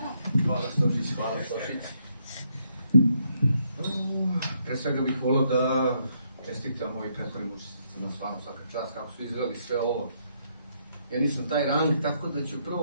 Hvala Stošić, hvala Stošić. Pre svega bih volio da čestitam mojih prethodnim učesnicima, stvarno svaka čast, kako su izveli sve ovo. Ja nisam taj rang, tako da ću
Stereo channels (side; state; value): both; inverted; correlation -0.74